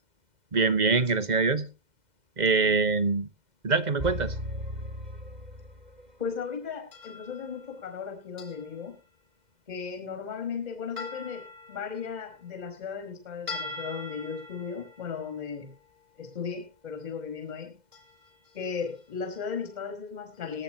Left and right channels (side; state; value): left; late; 2.0 ms